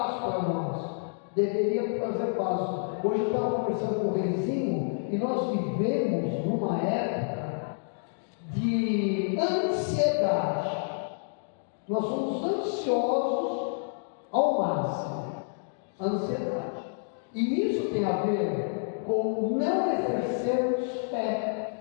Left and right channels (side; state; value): right; silent; digital silence